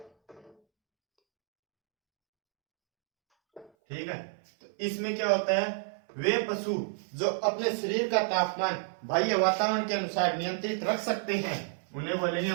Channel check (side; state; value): left; drops out; at 3.7 s